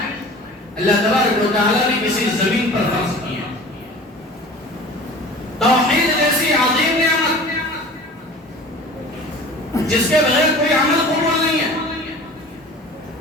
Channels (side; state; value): both; normal; correlation 0.41